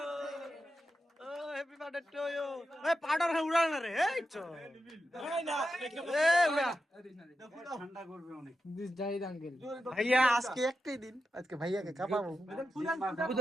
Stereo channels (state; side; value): normal; both; correlation 0.89